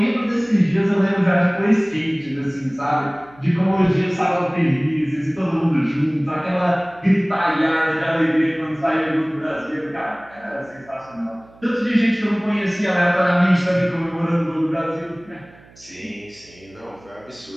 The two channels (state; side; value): noise; right; hum, 25 dB below the sound